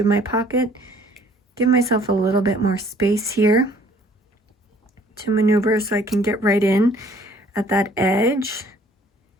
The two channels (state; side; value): normal; both; correlation 0.57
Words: my pocket. Give myself a little bit more space here to maneuver so I can get right in at that edge.